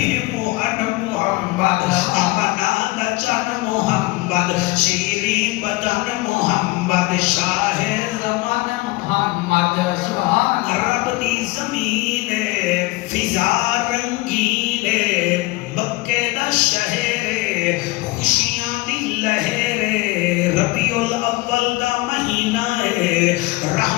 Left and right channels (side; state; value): right; quieter; 21.4 dB